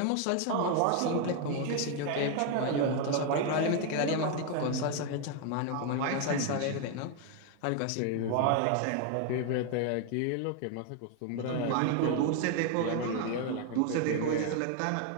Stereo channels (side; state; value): both; different; correlation 0.01